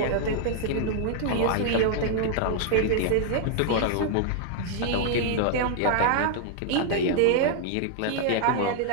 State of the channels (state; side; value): different; both; correlation 0.00